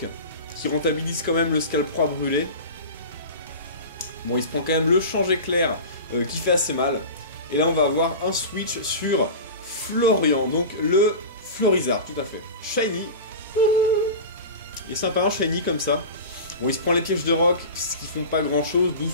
qui rentabilise quand même le Scalproie brûlé. Bon, il se prend quand même le change éclair qui fait assez mal. Et là, on va avoir un switch sur Florian, donc le Florizard, tout à fait. Shiny. Il est sympa, un Shiny comme ça. Bon, il se prend les pièges de roc, ce qui font pas grand chose,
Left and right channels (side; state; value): both; inverted; correlation -0.31